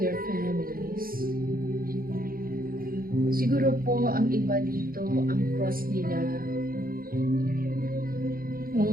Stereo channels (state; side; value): late; left; 0.42 ms